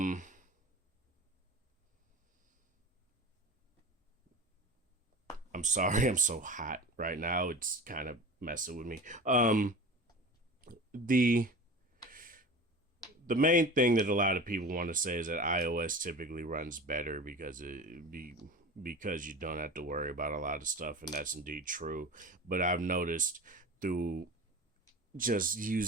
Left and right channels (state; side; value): normal; both; correlation 0.33